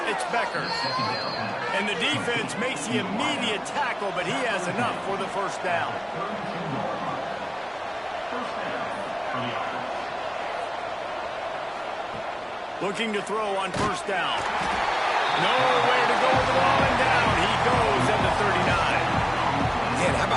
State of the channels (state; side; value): identical; both; correlation 1.00